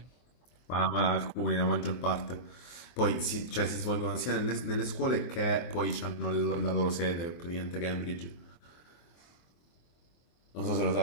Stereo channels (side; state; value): right; late; 24 ms